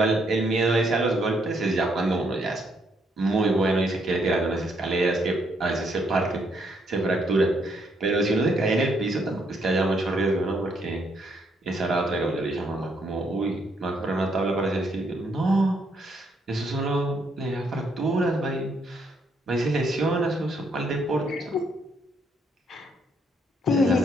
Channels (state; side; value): normal; both; correlation 0.73